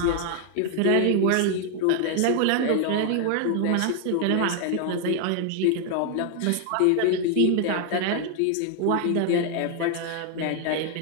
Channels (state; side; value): different; both; correlation 0.00